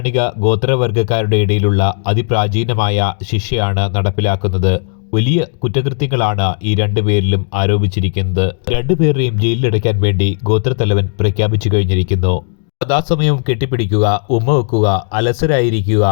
ഗോത്രവർഗക്കാരുടെ ഇടയിലുള്ള അതിപ്രാചീനമായ ശിക്ഷയാണ് നടപ്പിലാക്കുന്നത്. വലിയ കുറ്റകൃത്യങ്ങളാണ് ഈ രണ്ടുപേരിലും ആരോപിച്ചിരിക്കുന്നത്. രണ്ടുപേരെയും ജയിലിലടയ്ക്കാൻ വേണ്ടി ഗോത്രത്തലവൻ പ്രഖ്യാപിച്ചു കഴിഞ്ഞിരിക്കുന്നു. സദാസമയവും കെട്ടിപ്പിടിക്കുക, ഉമ്മ വെക്കുക, അലസരായിരിക്കുക,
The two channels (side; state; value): right; silent; digital silence